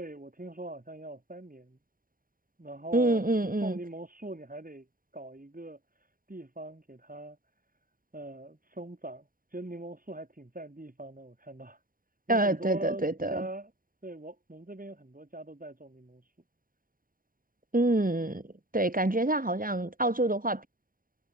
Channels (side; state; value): left; late; 0.41 ms